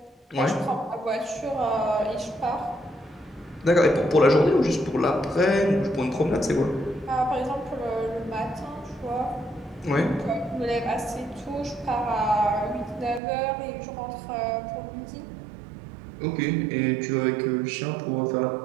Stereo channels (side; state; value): left; drops out; at 13.2 s